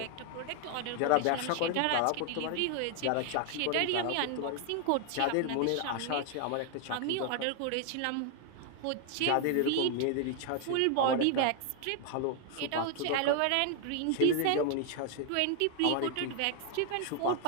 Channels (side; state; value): both; different; correlation 0.00